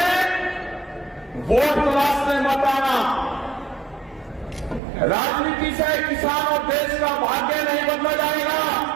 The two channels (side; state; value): left; drops out; at 4.8 s